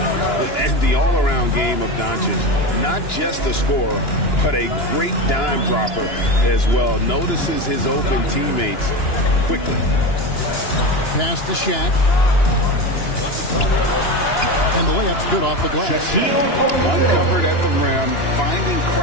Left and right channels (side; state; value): right; late; 2.9 ms